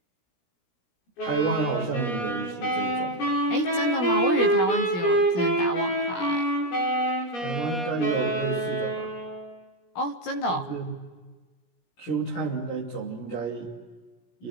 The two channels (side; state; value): right; late; 17 ms